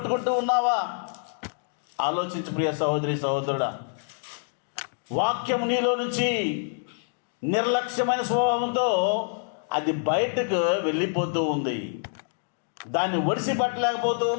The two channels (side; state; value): right; silent; digital silence